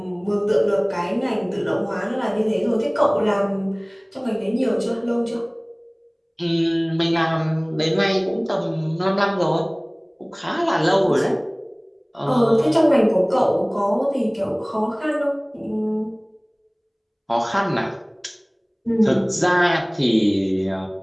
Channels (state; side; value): identical; both; correlation 1.00